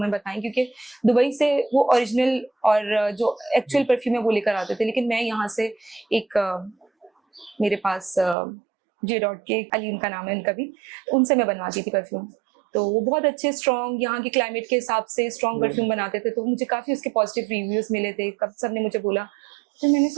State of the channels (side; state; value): left; drops out; at 8.3 s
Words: बताएं, क्योंकि दुबई से वो ओरिजिनल और जो एक्चुअल परफ्यूम है वो लेकर आते थे, लेकिन मैं यहाँ से एक मेरे पास J.Dot के अली उनका नाम है, उनका भी, उनसे मैं बनवाती थी परफ्यूम। तो वो बहुत अच्छे स्ट्रॉन्ग, यहाँ के क्लाइमेट के हिसाब से स्ट्रॉन्ग परफ्यूम बनाते थे, तो मुझे काफी उसके पॉजिटिव रिव्यूज मिले थे, सब ने मुझे बोला। तो मैंने